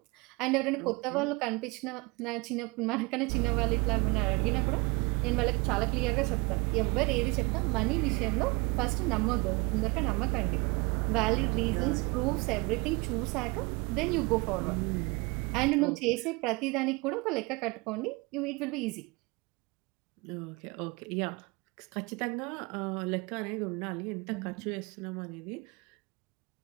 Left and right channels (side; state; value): left; quieter; 26.5 dB